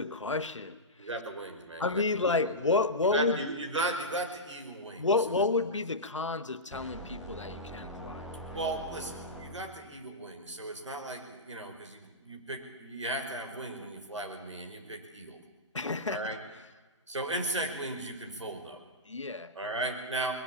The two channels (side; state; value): both; normal; correlation -0.14